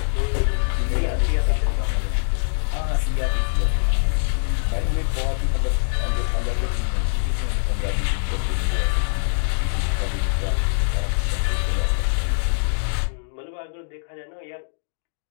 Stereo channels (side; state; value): right; silent; digital silence